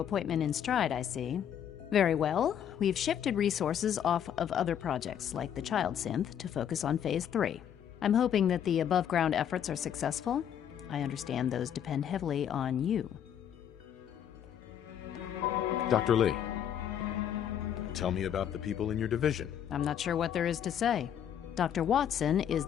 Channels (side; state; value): right; quieter; 9.3 dB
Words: appointment in stride, I see. Very well. We've shifted resources off of other projects, like the Child Synth, to focus on Phase 3. I'm hoping that the above-ground efforts are successful. I understand those depend heavily on you. Dr. Lee, tell me about the people in your division. I'm not sure what there is to say. Dr. Watson is